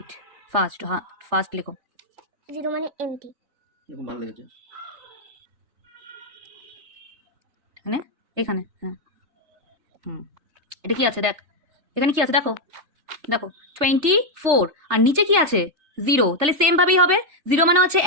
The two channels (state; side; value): late; left; 3.4 ms